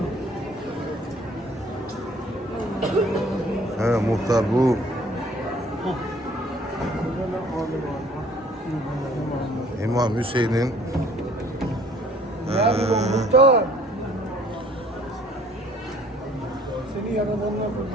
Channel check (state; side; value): normal; both; correlation 0.56